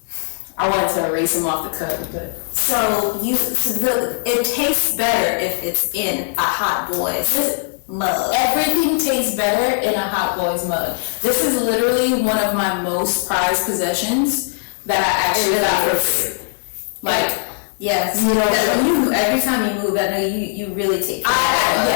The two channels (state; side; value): silent; right; 58 dB below the other